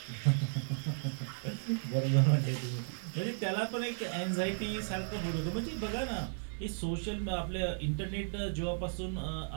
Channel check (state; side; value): silent; left; 55 dB below the other